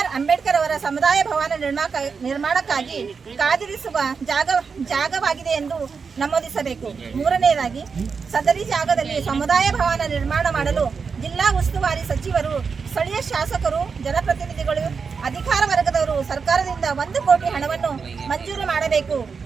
ಅಂಬೇಡ್ಕರ್ ಅವರ ಸಮುದಾಯ ಭವನ ನಿರ್ಮಾಣಕ್ಕಾಗಿ ಕಾದಿರಿಸುವ ಜಾಗವಾಗಿದೆ ಎಂದು ನಮೂದಿಸಬೇಕು. ಮೂರನೆಯದಾಗಿ ಸದರಿ ಜಾಗದಲ್ಲಿ ಸಮುದಾಯ ಭವನ ನಿರ್ಮಾಣ ಮಾಡಲು ಜಿಲ್ಲಾ ಉಸ್ತುವಾರಿ ಸಚಿವರು, ಸ್ಥಳೀಯ ಶಾಸಕರು, ಜನಪ್ರತಿನಿಧಿಗಳು, ಅಧಿಕಾರ ವರ್ಗದವರು ಸರ್ಕಾರದಿಂದ 1 ಕೋಟಿ ಹಣವನ್ನು ಮಂಜೂರು ಮಾಡಬೇಕು.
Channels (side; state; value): left; quieter; 5.5 dB